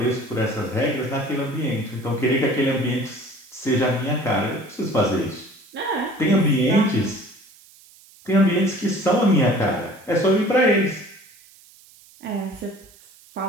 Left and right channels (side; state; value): right; noise; hiss, 25 dB below the sound